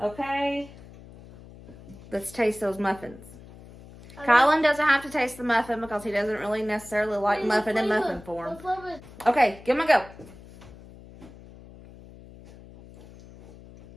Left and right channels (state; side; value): noise; left; hum, 19 dB below the sound